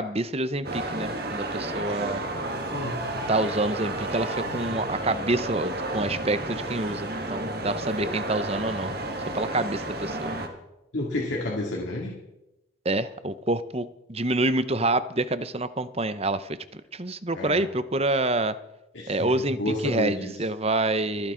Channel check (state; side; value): normal; both; correlation 0.28